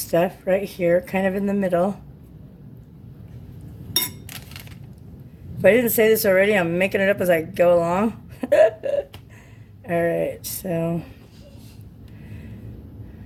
right here, kind of in the middle. If I didn't say this already, I'm making it up as I go along. All right, so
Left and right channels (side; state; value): both; identical; correlation 1.00